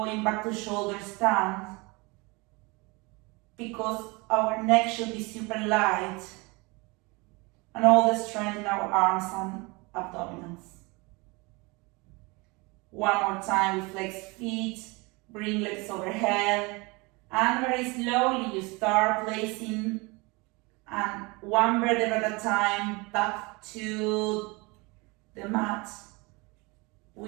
back to shoulder stand, because our neck should be super light and all the strength in our arms and abdominals. One more time, we flex feet, bring legs overhead, and very slowly you start placing and one vertebra at a time back to the mat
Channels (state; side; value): quieter; left; 26.4 dB